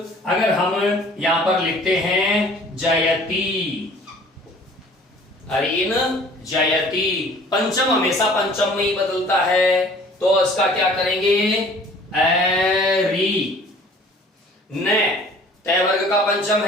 हम यहां पर लिखते हैं जयती, अरीन जयती, पंचम हमेशा पंचम में ही बदलता है, तो इसका क्या करेंगे? एरी। न तय वर्ग का पंचम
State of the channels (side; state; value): both; normal; correlation 0.51